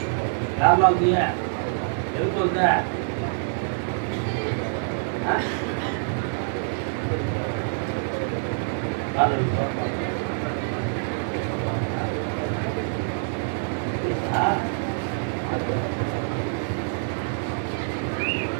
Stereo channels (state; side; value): silent; left; digital silence